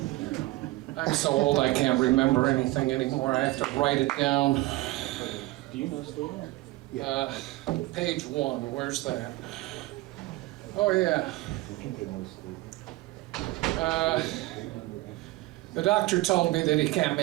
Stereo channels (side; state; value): left; quieter; 19.2 dB